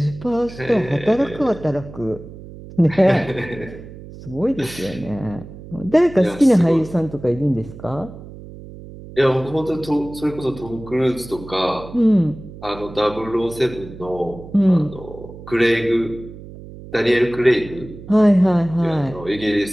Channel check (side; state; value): right; noise; hum, 15 dB below the sound